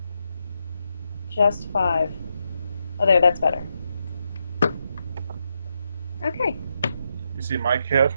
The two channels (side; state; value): both; inverted; correlation -0.84